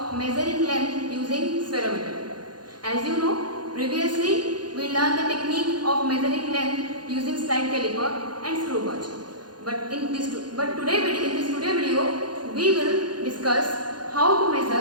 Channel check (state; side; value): late; left; 0.70 ms